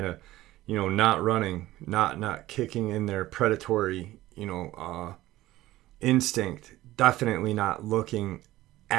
of, not running, not kicking in their predatory, instinct, definitely not looking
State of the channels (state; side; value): quieter; left; 16.3 dB